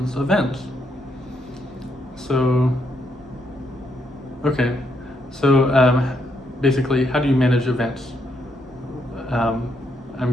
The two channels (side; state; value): both; normal; correlation 0.77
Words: events? So, basically, how do you manage events? I'm